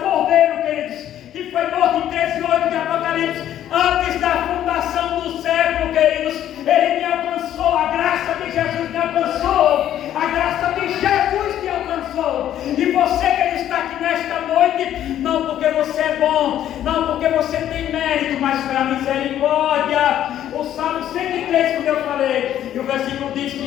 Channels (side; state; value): right; quieter; 11.4 dB